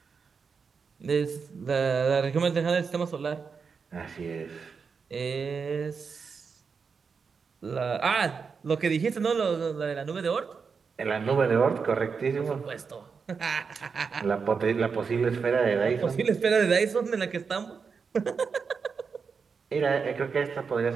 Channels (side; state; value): left; quieter; 5.6 dB